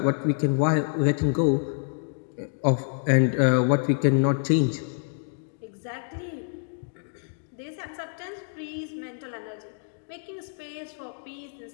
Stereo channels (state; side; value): silent; right; digital silence